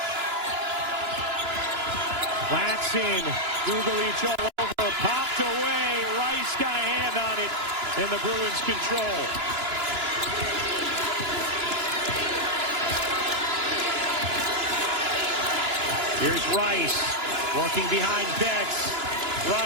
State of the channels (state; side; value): late; left; 2.9 ms